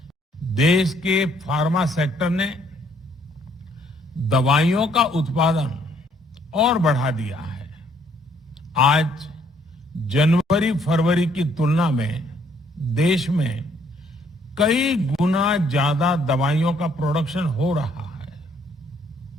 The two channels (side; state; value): both; normal; correlation 0.66